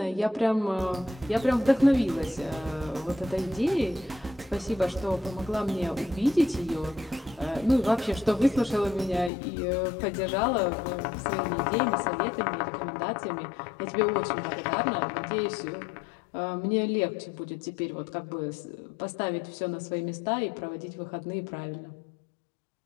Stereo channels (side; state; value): right; drops out; at 9.3 s